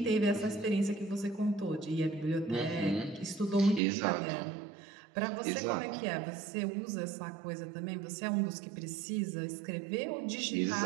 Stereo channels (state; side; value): drops out; left; at 3.8 s